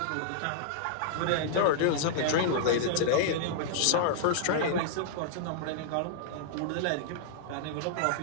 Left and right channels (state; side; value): different; both; correlation -0.02